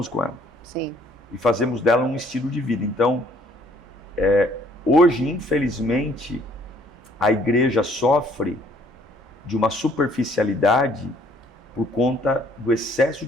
com ela. Sim. E fazemos dela um estilo de vida. Então, hoje, infelizmente, a igreja sofre de uma superficialidade por conta do excesso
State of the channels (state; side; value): normal; both; correlation 0.61